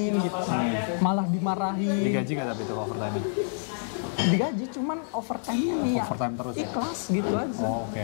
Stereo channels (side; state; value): right; silent; 60 dB below the other